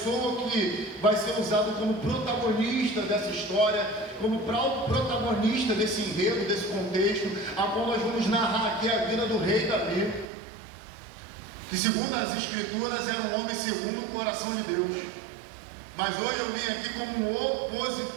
que vai ser usado como protagonista dessa história, como protagonista desse enredo, desse contexto, a qual nós vamos narrar aqui a vida do rei Davi, que segundo as Escrituras era um homem segundo o coração de Deus. Mas hoje eu vim aqui como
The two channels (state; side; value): drops out; left; at 10.2 s